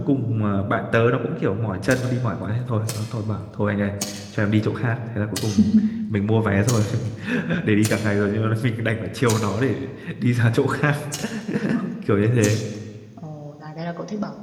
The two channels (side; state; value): both; identical; correlation 1.00